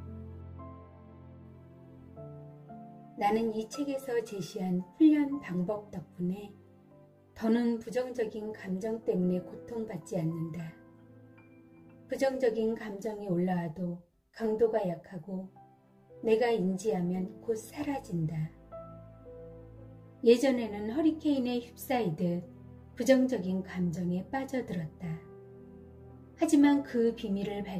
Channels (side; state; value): both; identical; correlation 1.00